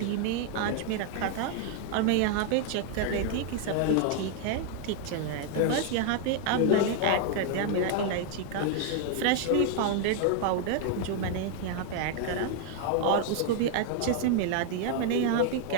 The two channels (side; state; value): both; different; correlation 0.00